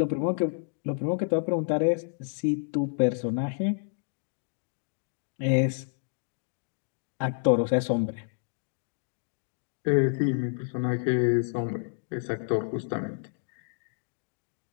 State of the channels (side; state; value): right; silent; digital silence